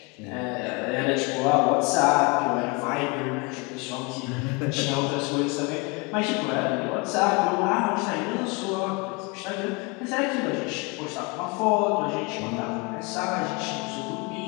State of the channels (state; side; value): quieter; right; 28.5 dB